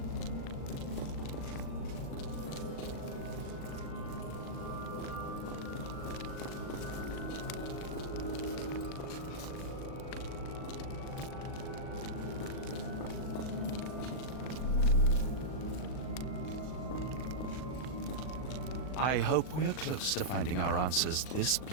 I hope we are close to finding our answers. This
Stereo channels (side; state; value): right; late; 39 ms